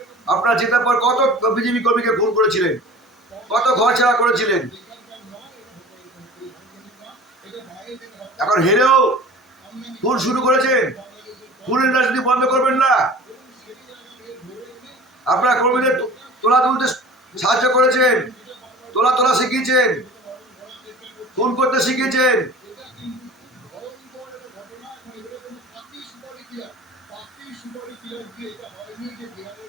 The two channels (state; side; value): normal; both; correlation 0.42